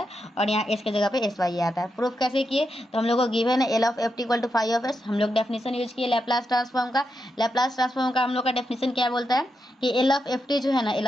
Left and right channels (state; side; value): normal; both; correlation 0.85